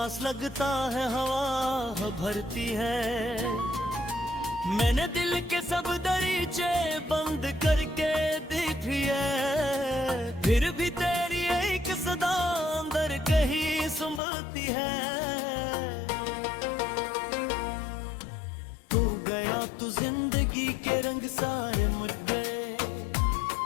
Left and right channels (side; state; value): right; drops out; at 14.2 s